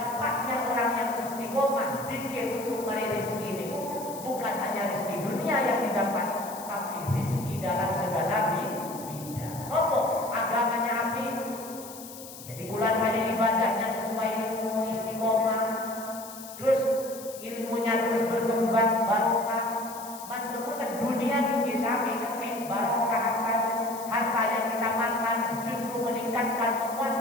orang yang istiqomah dikir untuk meraih rezeki ini bukan hanya rezeki dunia yang didapat, tapi rezeki dalam segala bidang. Apa? Agamanya api. Jadi bulan banyak ibadahnya sesuai ilmu istiqomah. Terus ilmunya terus berkembang barokah. Manfaat dunia tinggi sampai ketik barokah harta yang kita makan justru meningkatkan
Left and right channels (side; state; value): left; noise; hiss, 14 dB below the sound